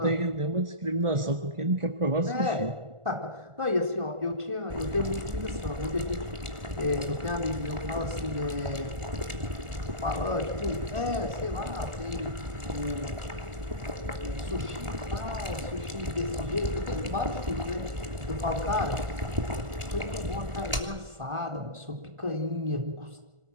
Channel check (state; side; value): late; left; 1.4 ms